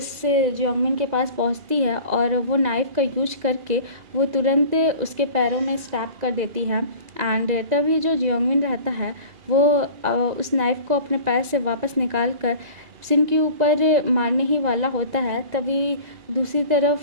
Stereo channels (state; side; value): late; left; 2.0 ms